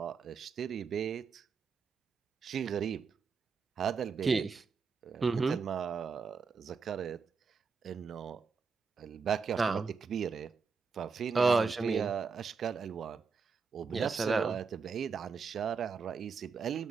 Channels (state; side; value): quieter; left; 5.2 dB